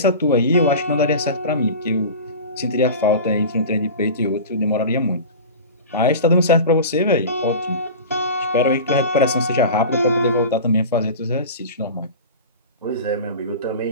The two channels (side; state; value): both; inverted; correlation -0.33